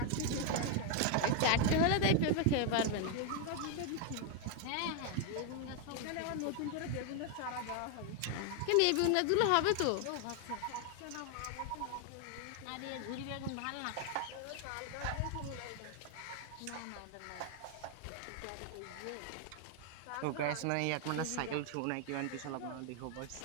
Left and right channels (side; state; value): both; different; correlation 0.01